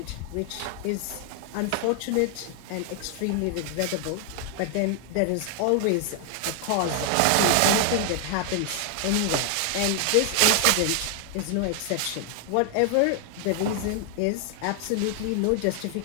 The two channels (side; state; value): both; different; correlation 0.00